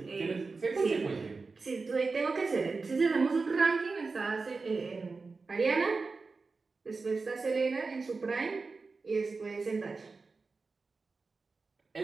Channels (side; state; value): left; quieter; 4.2 dB